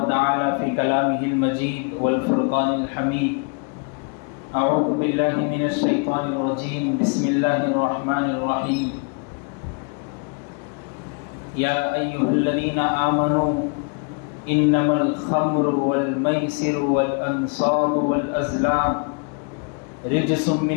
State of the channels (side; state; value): right; quieter; 37.4 dB